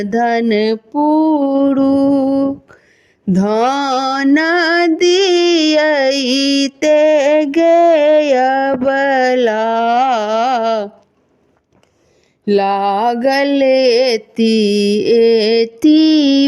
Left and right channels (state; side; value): identical; both; correlation 1.00